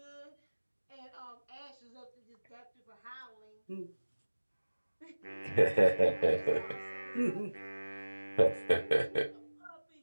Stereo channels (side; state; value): both; inverted; correlation -1.00